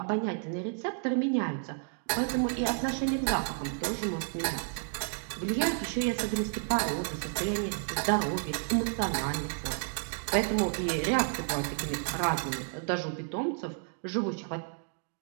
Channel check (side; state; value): left; silent; 57 dB below the other